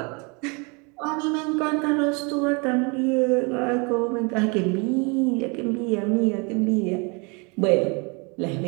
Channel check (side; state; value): left; quieter; 31.1 dB